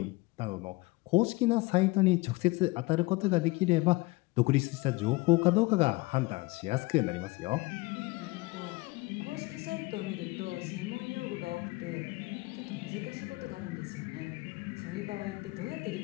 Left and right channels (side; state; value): right; quieter; 22.6 dB